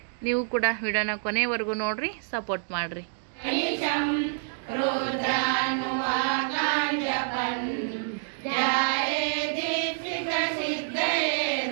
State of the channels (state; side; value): silent; left; digital silence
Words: ನೀವು ಕೂಡ ವಿಡಿಯೋನ ಕೊನೆವರೆಗೂ ನೋಡ್ರಿ, ಸಪೋರ್ಟ್ ಮಾಡಿರಿ.